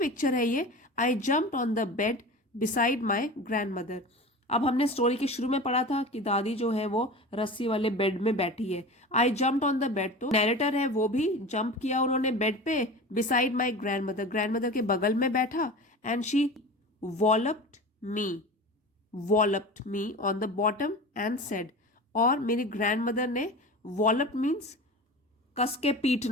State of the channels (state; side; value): normal; both; correlation 0.33